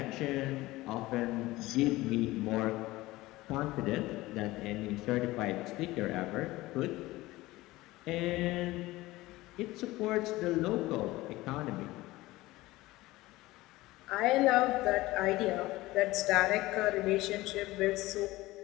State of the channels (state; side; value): quieter; right; 18.8 dB